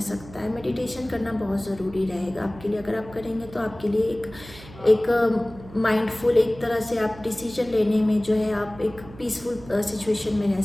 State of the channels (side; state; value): right; noise; hum, 18 dB below the sound